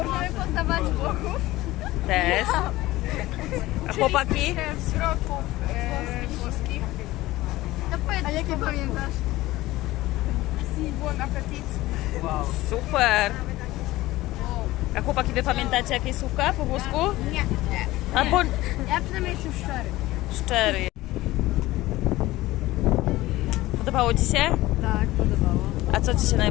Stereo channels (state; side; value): quieter; right; 17.7 dB